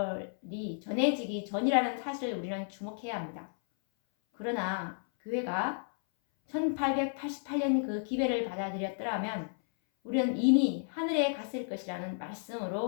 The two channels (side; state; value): right; silent; 56 dB below the other